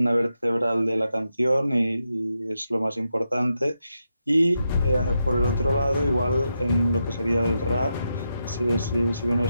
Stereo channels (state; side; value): inverted; both; correlation -0.85